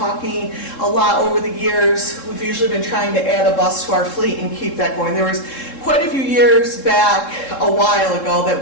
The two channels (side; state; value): right; late; 3.7 ms